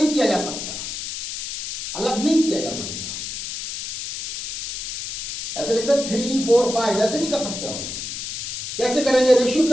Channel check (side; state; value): left; noise; hiss, 6 dB below the sound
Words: किया जा सकता, अलग नहीं किया जा सकता। ऐसे लिखते 3 4 5 ऐसे नहीं कर सकते हो। कैसे करेंगे? रेशियो